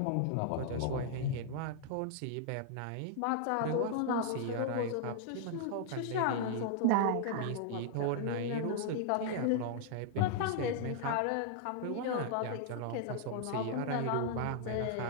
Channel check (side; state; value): both; different; correlation -0.01